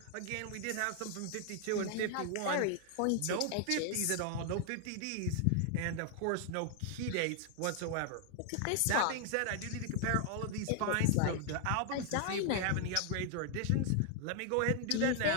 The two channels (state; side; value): different; both; correlation 0.00